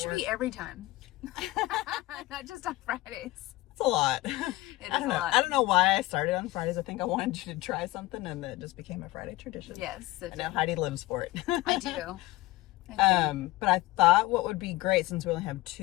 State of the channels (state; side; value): quieter; right; 19.2 dB